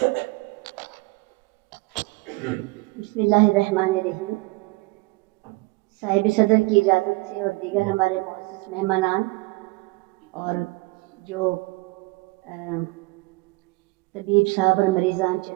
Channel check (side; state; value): left; quieter; 24.2 dB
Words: साहिब सदर की इजाज़त से और दीगर हमारे मुअज़्ज़ज़ मेहमानान और जो तबीब साहब और मरीज़ान